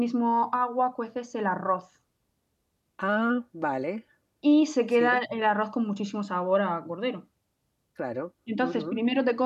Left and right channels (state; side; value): identical; both; correlation 1.00